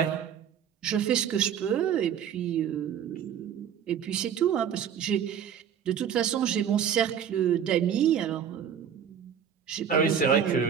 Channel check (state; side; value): quieter; left; 8.4 dB